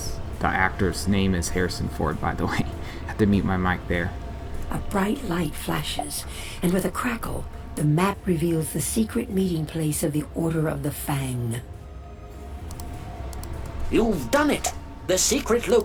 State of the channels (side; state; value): both; identical; correlation 1.00